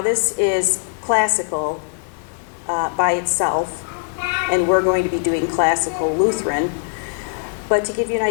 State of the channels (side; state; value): right; silent; digital silence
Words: this is classical by itself, and we're going to be doing classical Lutheran, but to give you an